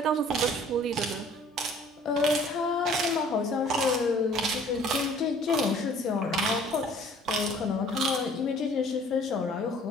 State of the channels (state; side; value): normal; both; correlation 0.54